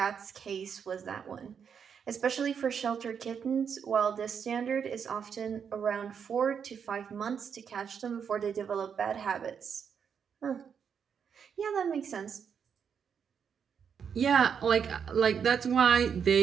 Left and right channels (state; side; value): quieter; left; 7.1 dB